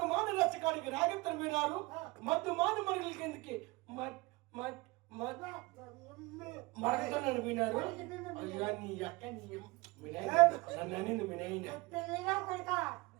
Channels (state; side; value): quieter; left; 23.4 dB